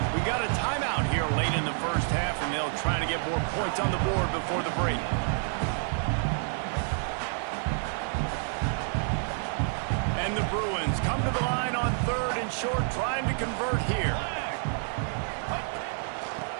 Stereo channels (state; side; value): silent; left; 56 dB below the other